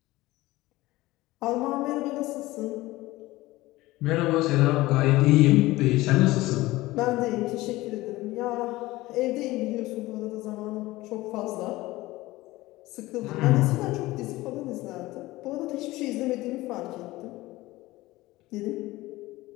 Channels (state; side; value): quieter; right; 18.7 dB